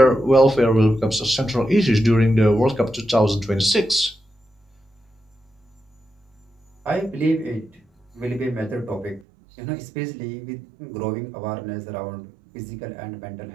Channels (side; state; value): left; drops out; at 9.2 s